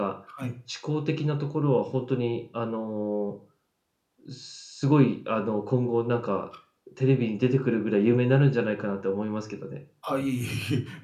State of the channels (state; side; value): identical; both; correlation 1.00